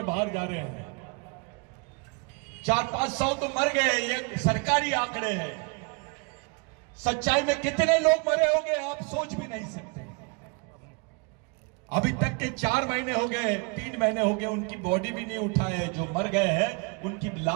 बाहर जा रहे हैं। 400-500 तो मर गए, ये सरकारी आंकड़े हैं। सच्चाई में कितने लोग मरे होंगे आप सोच भी नहीं सकते। अभी तक के 4 महीने हो गए, 3 महीने हो गए, उनकी बॉडी भी नहीं उठाए। जो मर गए हैं उनकी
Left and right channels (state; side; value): quieter; left; 32.0 dB